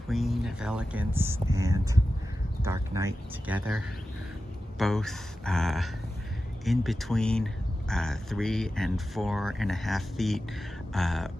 Queen of Elegance and Dark Night together, both in between 3 and 4.5 feet,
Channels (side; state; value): both; normal; correlation 0.93